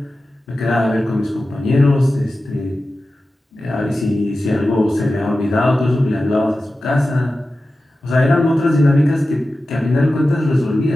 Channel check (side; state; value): both; normal; correlation 0.94